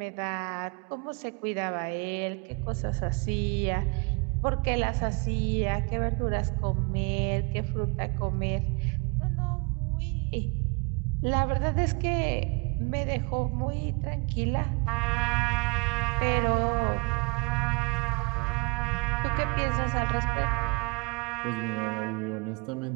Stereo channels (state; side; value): quieter; left; 30.7 dB